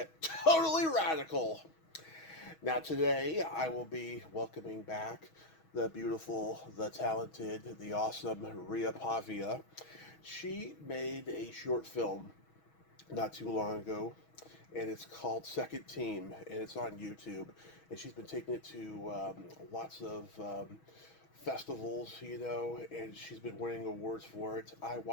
totally radical. Now today I will be welcoming back the beautiful, the talented, the awesome Ria Pavia. She made a short film not too long ago, and it's called Second Team, and it's on YouTube. And she's been taking it to lots of festivals, and she's been winning awards for it. I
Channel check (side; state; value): right; late; 6.2 ms